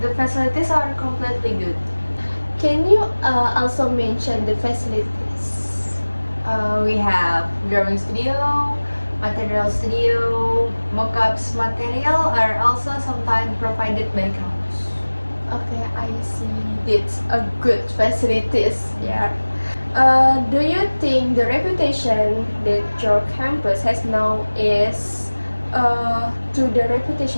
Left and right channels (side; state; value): both; inverted; correlation -1.00